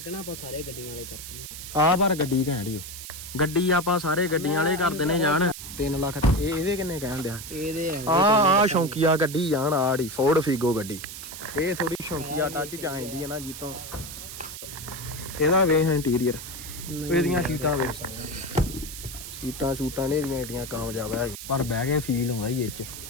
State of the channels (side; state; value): right; noise; hiss, 10 dB below the sound